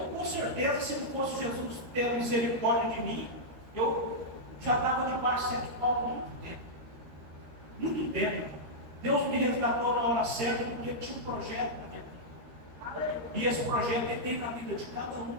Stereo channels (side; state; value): left; late; 13 ms